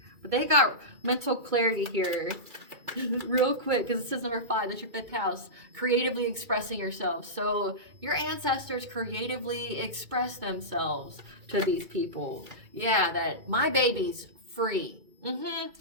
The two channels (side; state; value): left; late; 2.3 ms